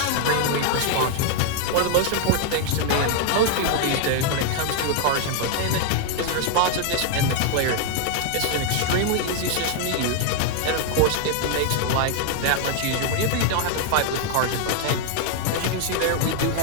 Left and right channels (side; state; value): both; different; correlation 0.00